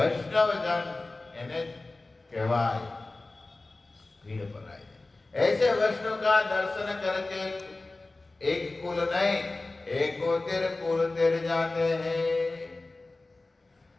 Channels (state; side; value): quieter; right; 3.2 dB